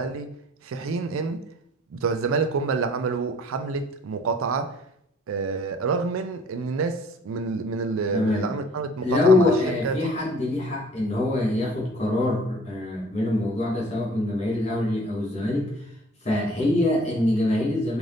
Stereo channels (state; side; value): normal; both; correlation 0.53